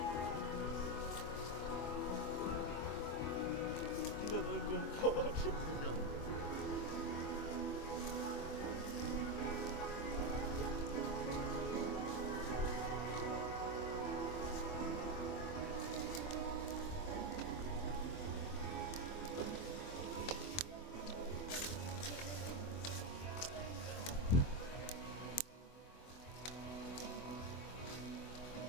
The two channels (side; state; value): right; late; 24 ms